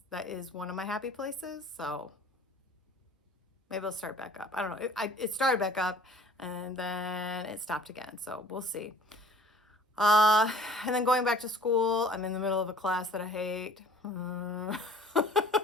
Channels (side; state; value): both; normal; correlation 0.50